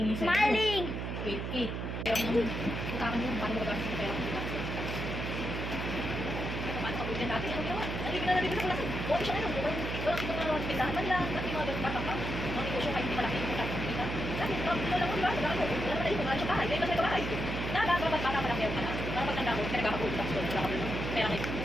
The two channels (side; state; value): right; noise; hum, 3 dB below the sound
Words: sa'yo. Maling! Wait. Kaya mo nung utakan mo, paano mo gagawin sa pera mo? Paano ka pwede natin? Ano ginawa? Nalibig na sa kulasan. Buwan siya ngayon. Walang mga pindahan man lang. At yung mga ganun patang mga negosyo kahit hindi malaki yung kita. Dahil, ito lang mo, diba? Wala na tayo. Wala siya bahay. Dahil kasi ito bahay. Dapat bata malaki ako ka na. Para pag tanda ko, pinagkakapulot ako doon. Wala ka doon. Kaya may,